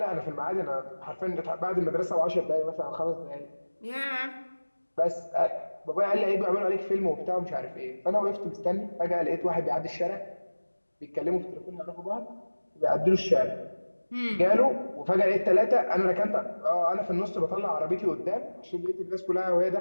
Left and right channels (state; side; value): inverted; both; correlation -1.00